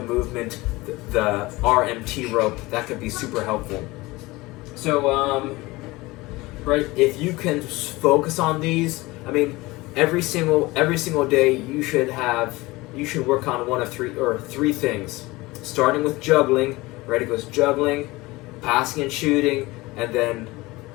movement, the RMT rope, that could be super helpful. So, right, if you can focus on these, I mean, every single day you should work on one of three things. Starting with juggling, right? It goes juggling, passing and shooting, and then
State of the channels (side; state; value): right; quieter; 21.2 dB